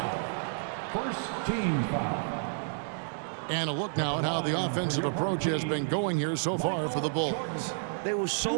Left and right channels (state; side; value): silent; left; digital silence